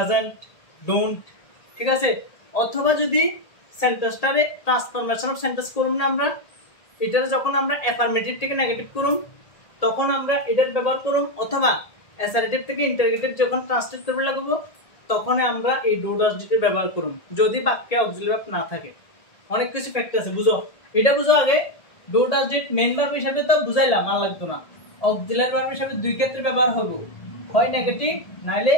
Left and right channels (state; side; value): late; right; 1.8 ms